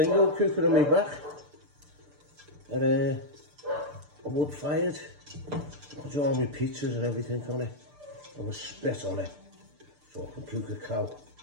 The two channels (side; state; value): left; late; 6.8 ms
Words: old cooker on my back. And a wood fired. I'll do all my pizzas and everything on it. I will spit on it. So I can cook a cow.